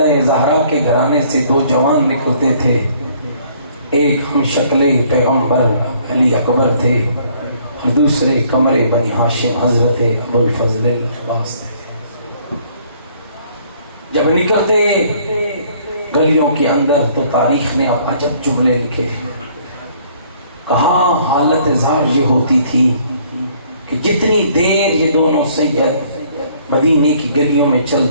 زہرا کے گھرانے سے 2 جوان نکلتے تھے، ایک ہم شکل پیغمبر علی اکبر تھے اور دوسرے قمر بنی ہاشم حضرت ابو الفضل العباس تھے۔ جب نکلتے گلیوں کے اندر تو تاریخ نے اب عجب جملے لکھے، کہا حالت ظاہر یہ ہوتی تھی کہ جتنی دیر یہ دونوں سید مدینے کی گلیوں میں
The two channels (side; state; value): both; inverted; correlation -0.61